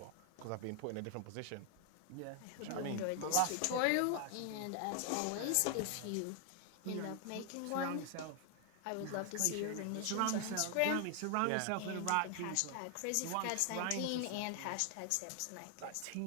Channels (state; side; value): different; both; correlation 0.00